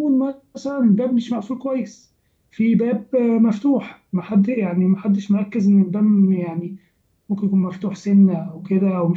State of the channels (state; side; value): identical; both; correlation 1.00